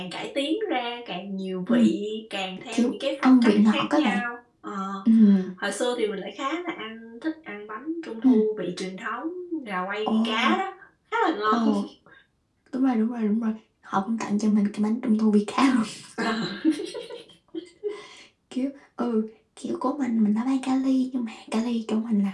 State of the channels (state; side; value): identical; both; correlation 1.00